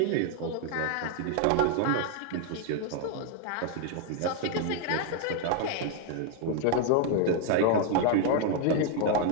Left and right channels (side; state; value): both; different; correlation 0.00